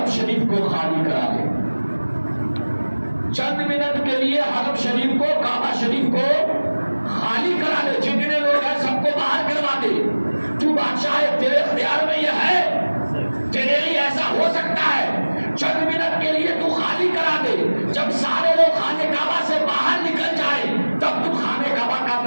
شریف کو خالی کرا دے، چند منٹ کے لیے حرم شریف کو، کعبہ شریف کو خالی کرا دے، جتنے لوگ ہیں سب کو باہر کروا دے۔ تو بادشاہ ہے، تیرے اختیار میں یہ ہے، تیرے لیے ایسا ہو سکتا ہے، چند منٹ کے لیے تو خالی کرا دے، جب سارے لوگ خانے کعبہ سے باہر نکل جائے تب تو خانے کعبہ کا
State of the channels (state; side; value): inverted; both; correlation -1.00